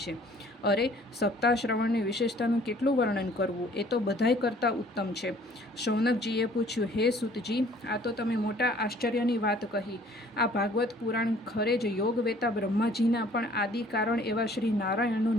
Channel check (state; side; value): normal; both; correlation 0.56